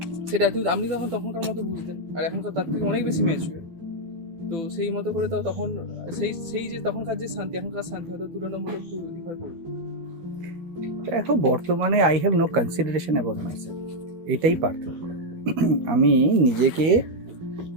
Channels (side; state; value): left; late; 13 ms